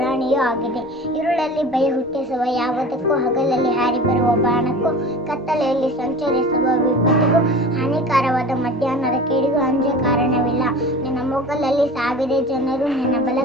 ಆಗಿದೆ. ഇരുಳಲ್ಲಿ ಭಯ ಹುಟ್ಟಿಸುವ ಯಾವುದಕ್ಕೂ, ಹಗಲಲ್ಲಿ ಹಾರಿ ಬರುವ ಬಾಣಕ್ಕೂ, ಕತ್ತಲೆಯಲ್ಲಿ ಸಂಚರಿಸುವ ವಿಪತ್ತಿಗೂ, ಹಾನಿಕಾರವಾದ ಮಧ್ಯಾಹ್ನದ ಕೇಡಿಗೂ ಅಂಜ ಕಾರಣವಿಲ್ಲ. ನಿನ್ನ ಮೊಗ್ಗಲಲ್ಲಿ 1000 ಜನರು, ನಿನ್ನ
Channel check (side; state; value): both; normal; correlation 0.38